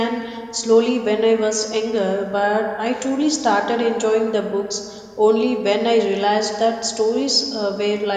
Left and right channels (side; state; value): both; identical; correlation 1.00